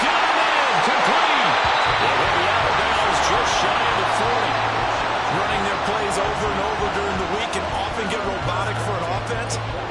got him in, complete. They'll be out of bounds just shy of the 40. Running their plays over and over during the week can often get robotic for an offense,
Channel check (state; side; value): identical; both; correlation 1.00